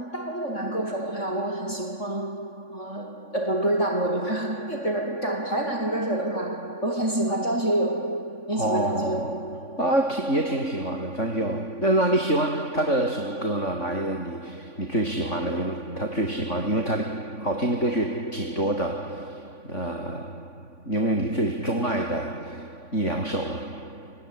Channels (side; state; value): right; late; 3.5 ms